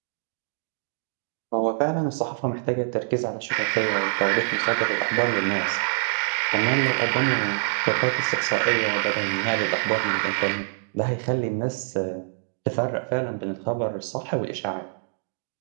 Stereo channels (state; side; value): silent; left; digital silence